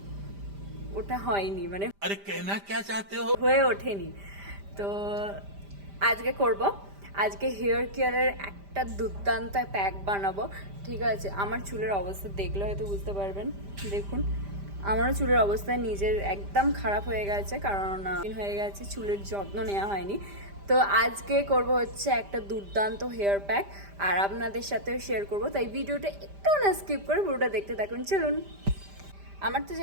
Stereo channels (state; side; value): late; left; 5.0 ms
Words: ওঠা হয়নি মানে अरे कहना क्या चाहते हो হয়ে ওঠেনি। তো আজকে হেয়ার কেয়ারের একটা দুর্দান্ত প্যাক বানাবো, ঠিক আছে? আমার চুলের অবস্থা দেখলে হয়তো বুঝতে পারবেন। দেখুন, আমারও চুলের অবস্থা নিজের একদম খারাপ হয়ে গেছে, কারণ হয়ে গেছে চুলের যত্ন নেওয়া হয়নি। তো আজকে করব হচ্ছে একটা দুর্দান্ত হেয়ার প্যাক, আর আপনাদের সাথেও শেয়ার করব। তাই ভিডিওটা একটু না স্কিপ করে পুরোটা দেখতে থাকুন। চলুন, আমার তো